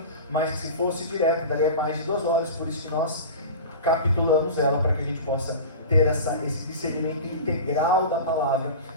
mas que se fosse direto, daria mais de 2 horas, por isso que nós capitulamos ela, para que a gente possa ter esse discernimento integral da palavra,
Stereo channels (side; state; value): both; inverted; correlation -0.31